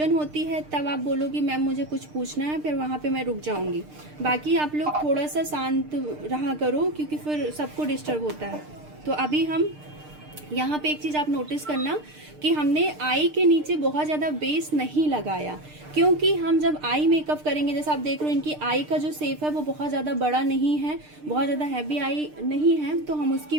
होती है तब आप बोलो कि मैम मुझे कुछ पूछना है, फिर वहां पे मैं रुक जाऊंगी। बाकी आप लोग थोड़ा सा शांत रहा करो, क्योंकि फिर सबको डिस्टर्ब होता है। तो अभी हम यहाँ पे एक चीज आप नोटिस करना कि हमने आई के नीचे बहुत ज्यादा बेस नहीं लगाया। क्योंकि हम जब आई मेकअप करेंगे, जैसे आप देख रहे हो इनकी आई का जो शेप है वो बहुत ज्यादा बड़ा नहीं है, बहुत ज्यादा हैवी आई नहीं है, तो हम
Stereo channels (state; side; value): late; left; 6.6 ms